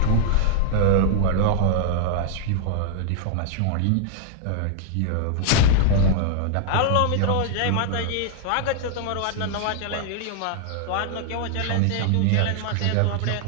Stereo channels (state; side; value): different; both; correlation -0.01